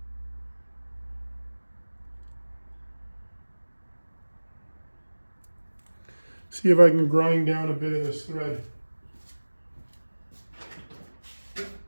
See if I can grind down a bit of this thread.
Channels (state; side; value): inverted; both; correlation -1.00